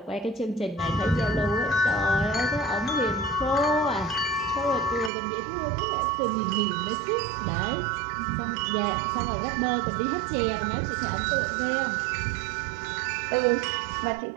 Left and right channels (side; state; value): left; drops out; at 5.1 s